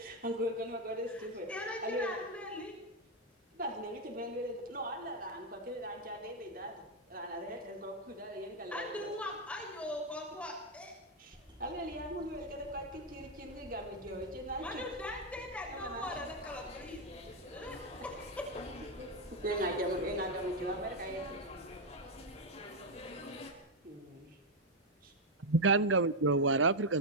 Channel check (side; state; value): both; normal; correlation 0.03